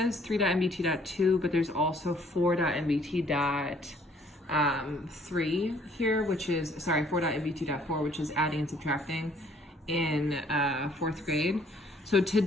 3.nbt.2, but there's also 4.nbt.3 here, which is, 4.nbt.4, which is adding and subtracting in fourth grade. So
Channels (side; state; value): both; normal; correlation 0.62